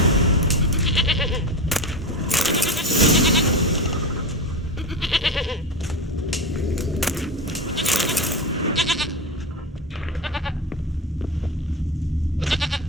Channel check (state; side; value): normal; both; correlation 0.20